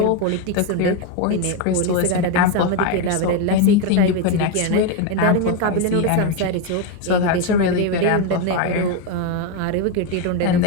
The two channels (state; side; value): different; both; correlation 0.02